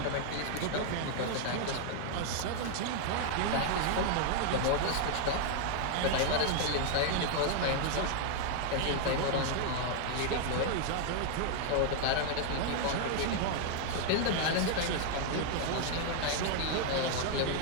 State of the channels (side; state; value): both; different; correlation 0.00